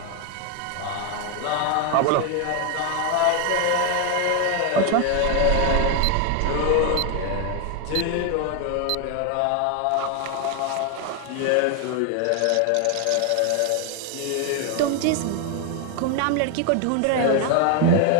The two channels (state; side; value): different; both; correlation 0.00